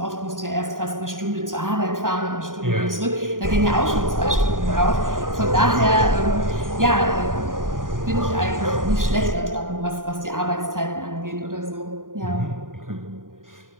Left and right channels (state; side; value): late; left; 0.90 ms